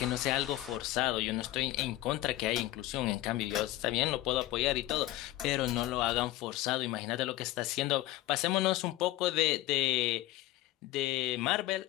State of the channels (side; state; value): right; quieter; 16.3 dB